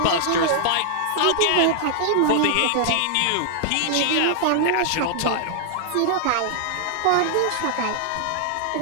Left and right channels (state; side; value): different; both; correlation -0.01